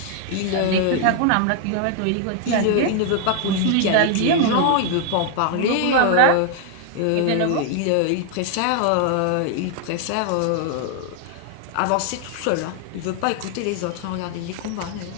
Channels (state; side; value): different; both; correlation 0.00